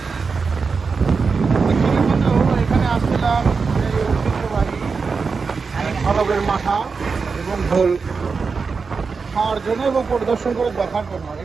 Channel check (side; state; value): left; quieter; 5.0 dB